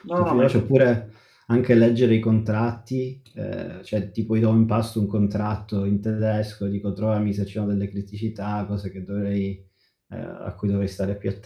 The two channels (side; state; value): both; identical; correlation 1.00